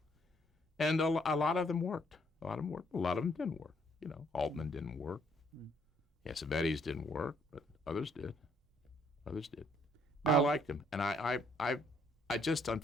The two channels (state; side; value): normal; both; correlation 0.68